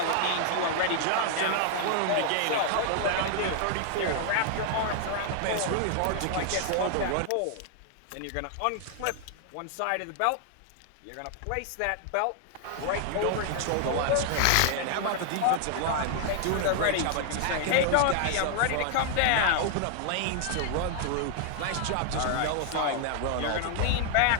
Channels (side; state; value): both; different; correlation 0.00